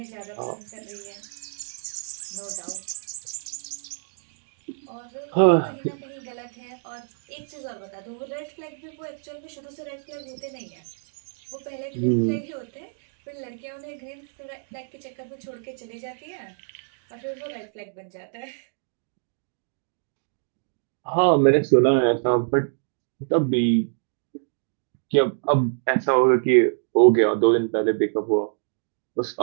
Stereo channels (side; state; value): left; silent; digital silence